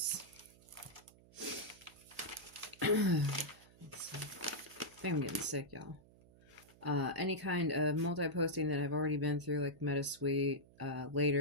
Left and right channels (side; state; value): right; noise; hum, 25 dB below the sound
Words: let's see. I think I'm getting sick, y'all. Any kind of multi-posting that I've already been through, like MetaSuite.